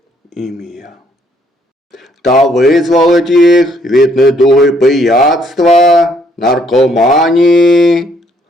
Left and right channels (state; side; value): normal; both; correlation 0.67